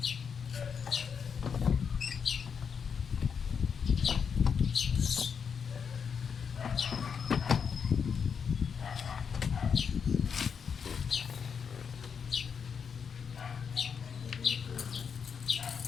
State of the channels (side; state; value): right; quieter; 6.6 dB